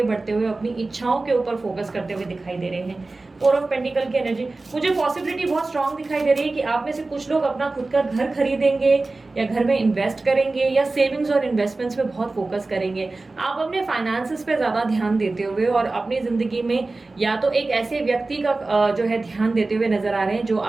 बढ़ते हुए, अपनी इच्छाओं के ऊपर फोकस करते हुए दिखाई दे रहे हैं। 4 ऑफ पेंटिकल की एनर्जी, मुझे पॉसिबिलिटी बहुत स्ट्रांग दिखाई दे रही है कि आप में से कुछ लोग अपना खुद का घर खरीदेंगे, या घर में इन्वेस्ट करेंगे, या सेविंग्स और इन्वेस्टमेंट्स पे बहुत फोकस करेंगे। आप अपने फाइनेंसेस पे ज्यादा ध्यान देते हुए और अपनी जिंदगी में या तो एक ऐसे व्यक्ति का जो है ध्यान देते हुए नजर आ रहे हैं जो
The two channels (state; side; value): quieter; left; 3.3 dB